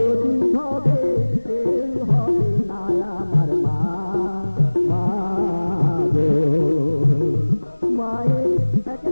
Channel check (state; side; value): inverted; both; correlation -1.00